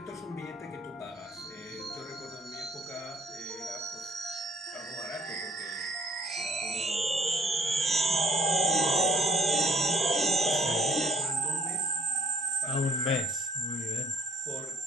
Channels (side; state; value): both; normal; correlation 0.61